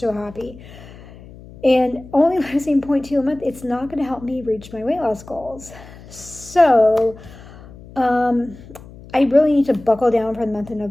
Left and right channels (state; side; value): noise; left; hum, 19 dB below the sound